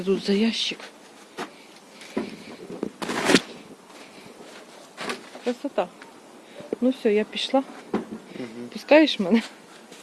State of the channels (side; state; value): both; identical; correlation 1.00